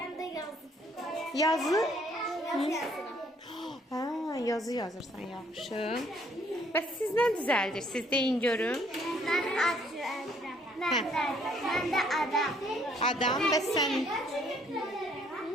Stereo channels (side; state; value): both; normal; correlation 0.64